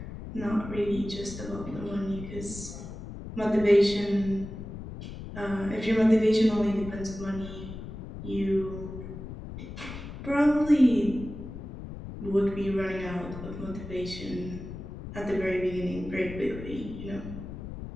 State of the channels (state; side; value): noise; left; rumble, 10 dB below the sound